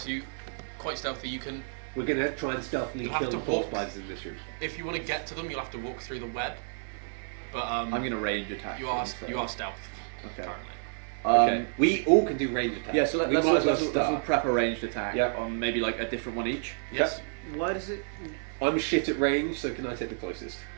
you quite stealthy. You can, We're going to try and stealthily You'll have kill to the 4 walk. spiders in this room. if you want to get to them, you'll have to walk through the web. But I'm gonna range attack. you are them, so- you are stealth Okay. currently. Okay. We all can do range attacks. Yeah, so We let's might as well let's start. prep a ranged attack Yep. on maybe like a different one each. Yes. Why does it... I'm shit at range, so can I take the closest?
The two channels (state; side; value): silent; left; digital silence